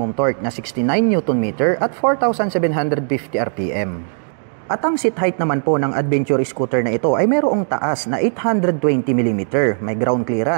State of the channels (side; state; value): left; silent; digital silence